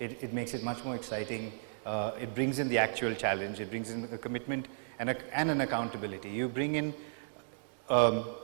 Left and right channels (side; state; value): left; silent; digital silence